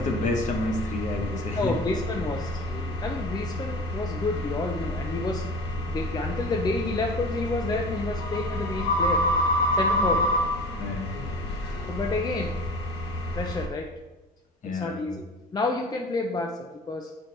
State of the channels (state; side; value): normal; both; correlation 0.39